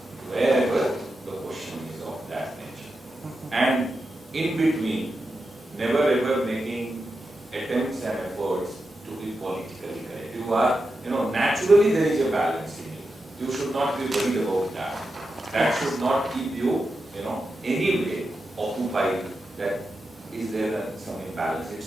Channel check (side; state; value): both; normal; correlation 0.89